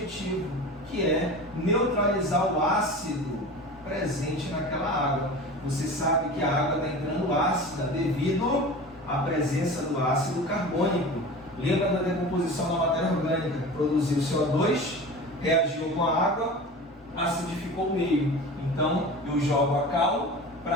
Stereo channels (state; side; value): normal; both; correlation 0.34